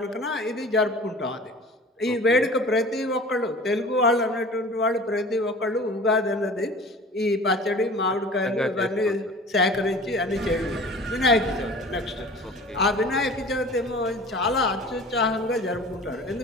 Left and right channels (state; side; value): normal; both; correlation 0.42